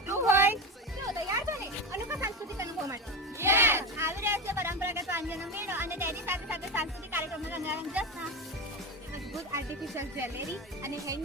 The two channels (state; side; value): normal; both; correlation 0.19